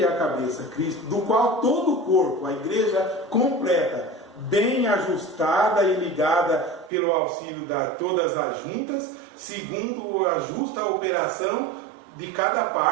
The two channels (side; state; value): left; drops out; at 6.9 s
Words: é a cabeça, Cristo, do qual todo o corpo, a igreja completa, bem ajustada e ligada pelo auxílio de todas as juntas, segundo a justa operação de cada